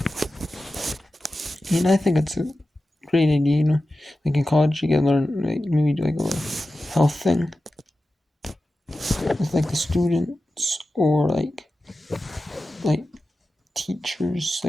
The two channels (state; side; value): normal; both; correlation 0.93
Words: And I think it's a great idea, Like in college you can learn, like maybe do like a health thing with like the students, or like teachers,